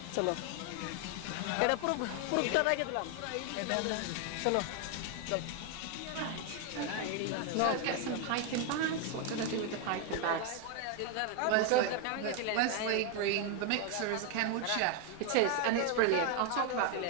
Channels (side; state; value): both; different; correlation 0.00